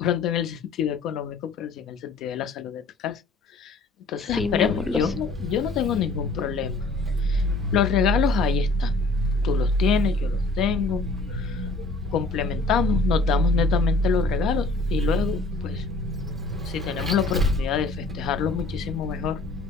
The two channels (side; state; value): right; quieter; 3.3 dB